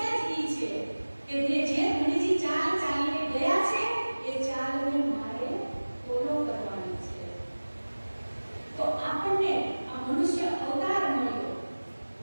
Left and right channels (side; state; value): both; inverted; correlation -1.00